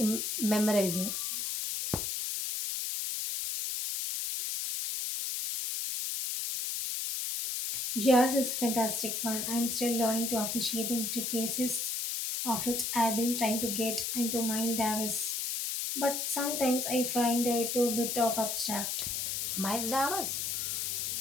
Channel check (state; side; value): noise; left; hiss, 1 dB below the sound